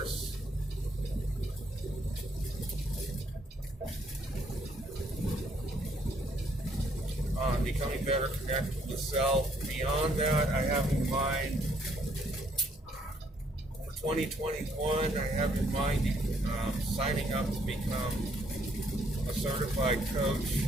On becoming better connected with self. Beyond that, I have in mind for 2021, I have in mind signing up to become a certified coach.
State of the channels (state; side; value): normal; both; correlation 0.68